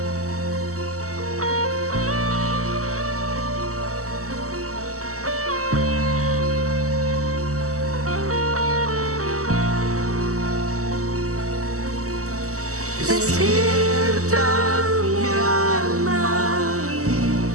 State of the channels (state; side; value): late; left; 0.65 ms